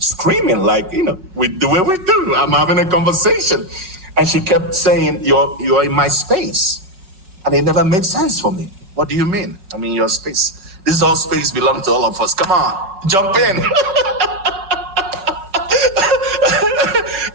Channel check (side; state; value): left; late; 5.1 ms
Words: like, we do what we do. I'm having a conversation. And she kept saying, you're in my space. And it never made sense for me. What do you mean? I mean, your space. This is all space belongs to all of us. Come on, jump in.